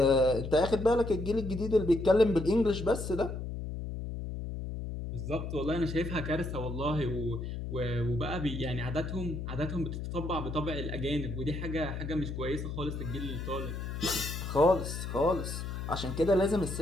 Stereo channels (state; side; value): noise; left; hum, 5 dB below the sound